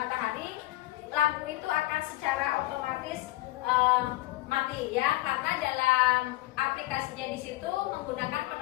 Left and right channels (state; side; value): quieter; right; 17.5 dB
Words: lampu itu akan secara otomatis mati ya, karena dalam aplikasinya di situ menggunakan